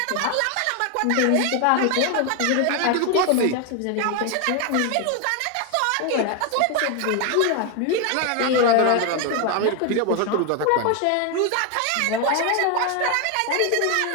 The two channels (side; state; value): both; different; correlation 0.01